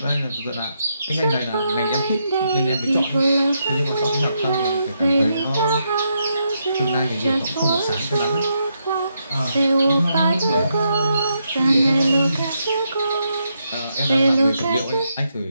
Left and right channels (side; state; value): both; inverted; correlation -0.80